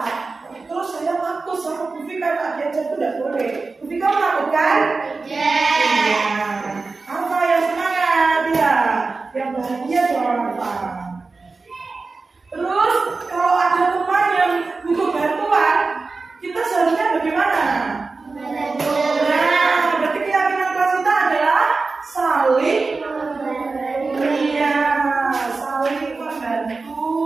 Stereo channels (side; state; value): left; quieter; 4.0 dB